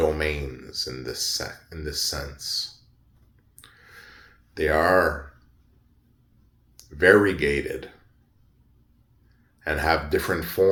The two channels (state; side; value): identical; both; correlation 1.00